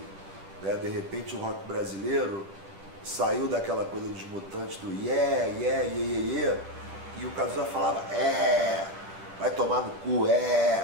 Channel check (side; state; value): left; late; 10 ms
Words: né? De repente o rock brasileiro saiu daquela coisa dos Mutantes, do yeah, yeah, yeah, yeah, yeah, e o Cazuza falava, vai tomar no cu,